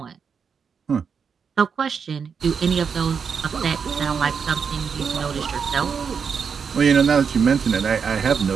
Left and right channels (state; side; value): quieter; left; 6.3 dB